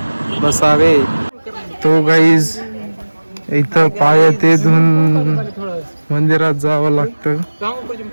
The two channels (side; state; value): both; inverted; correlation -1.00